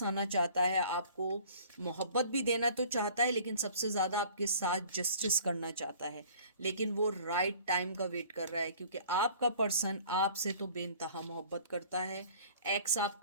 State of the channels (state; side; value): inverted; both; correlation -0.50